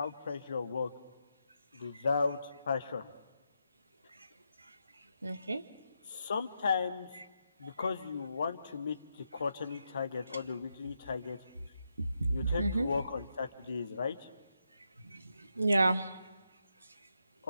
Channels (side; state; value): both; inverted; correlation -0.84